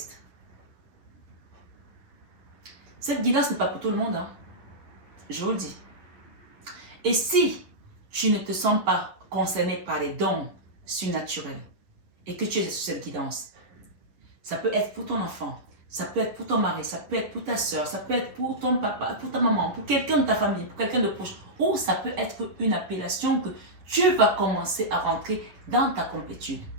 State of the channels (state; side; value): late; left; 10 ms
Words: Cette guidance n'est pas pour tout le monde, hein. Je vous le dis. Et si tu ne te sens pas concerné par les dons surnaturels et que tu es sur cette guidance, ça peut être pour ton enfant, ça peut être pour ton mari, ça peut être pour ta soeur, ça peut être pour ton papa, pour ta maman, pour quelqu'un de ta famille, pour quelqu'un de proche, ou ça peut être une appellation que tu vas commencer à rentrer dans ta complétude.